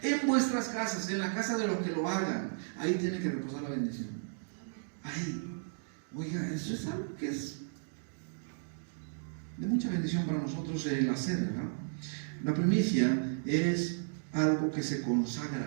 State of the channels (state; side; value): silent; left; digital silence